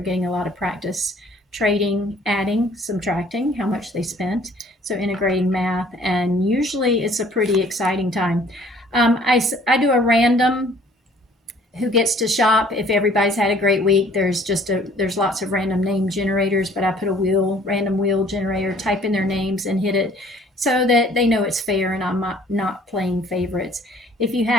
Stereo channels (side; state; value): both; normal; correlation 0.56